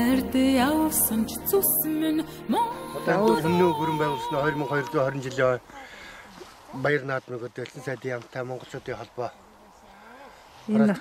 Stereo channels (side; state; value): both; identical; correlation 1.00